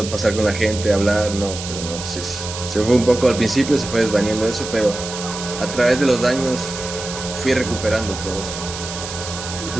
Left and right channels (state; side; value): noise; right; hiss, 9 dB below the sound